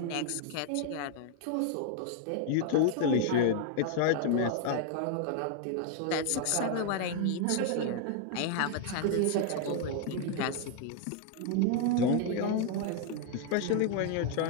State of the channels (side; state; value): both; different; correlation 0.00